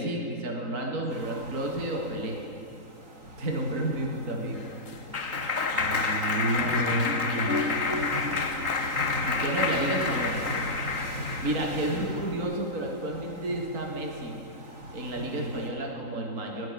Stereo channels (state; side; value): late; left; 3.8 ms